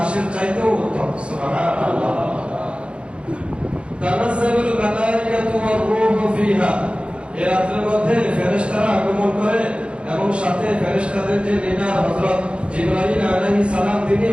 চাইতেও উত্তম। সুবহানাল্লাহ। তানাজ্জালুল মালায়েকাতু ওয়ার রূহু ফিহা, এই রাতের মধ্যে ফেরেশতারা আগমন করে এবং সাথে ফেরেশতাদের যে লিডার হযরত জিবরাইল আলাইহিস সালাম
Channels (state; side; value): late; left; 0.058 ms